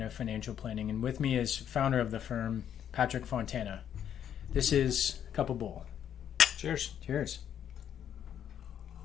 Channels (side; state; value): right; quieter; 9.5 dB